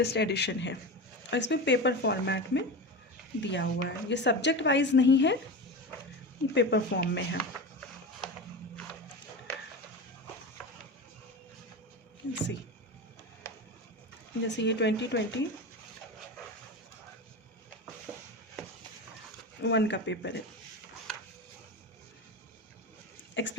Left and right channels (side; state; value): both; normal; correlation 0.24